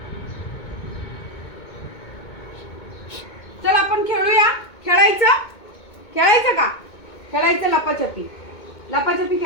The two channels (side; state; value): right; late; 2.2 ms